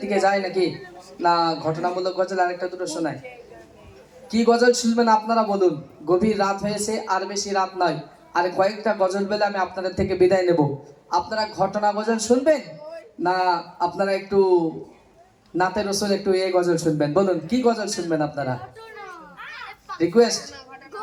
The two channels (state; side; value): identical; both; correlation 1.00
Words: দিকে যায় নাকি না ঘটনামূলক গজল আরেকটা দুটো শোনায়? কি গজল শুনবেন আপনারা বলুন? গভীর রাত হয়েছে, আর বেশি রাত নয়, আর কয়েকটা গজল বেলে আমি আপনাদের থেকে বিদায় নেব। আপনারা ঘটনা গজল শুনবেন না আপনারা একটু নাতে রসুল একটু এই গজল শুনবেন? বলুন কি গজল শুনবেন আপনারা? রিকোয়েস্ট?